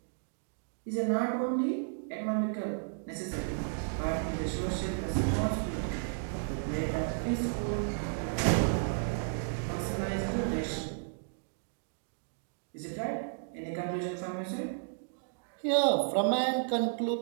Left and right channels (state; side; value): silent; left; digital silence